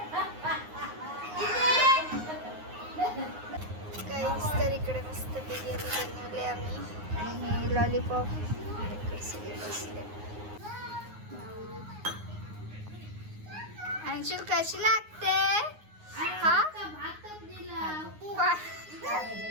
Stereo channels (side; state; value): left; late; 9.6 ms